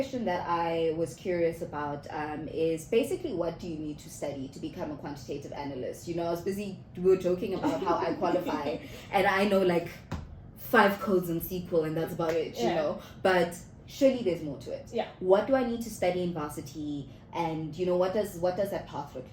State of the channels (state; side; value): identical; both; correlation 1.00